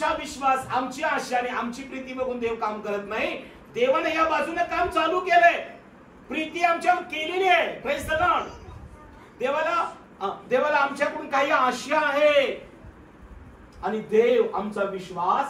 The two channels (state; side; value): identical; both; correlation 1.00